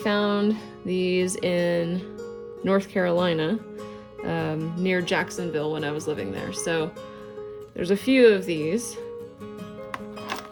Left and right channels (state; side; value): identical; both; correlation 1.00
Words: these in North Carolina, near Jacksonville when I was living there. So there's a few of these.